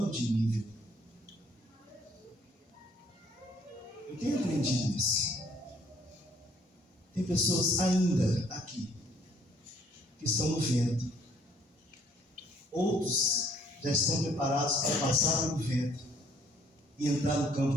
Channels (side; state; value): both; normal; correlation 0.62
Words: de nível. Eu tenho aprendido isso. Tem pessoas ainda aqui que estão no vento. Outros já estão preparados para passar no vento e entrar no